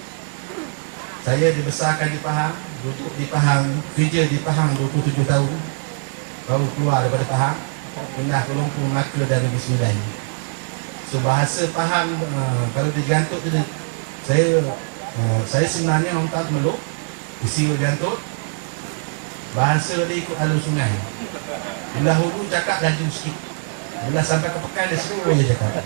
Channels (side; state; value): left; silent; 59 dB below the other